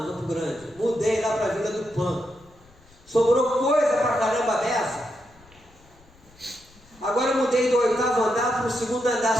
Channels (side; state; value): left; noise; rumble, 27 dB below the sound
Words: em Campo Grande, mudei lá para a Vila do Pan. Sobrou coisa pra caramba dessa. Agora eu mudei do 8º andar para o 2º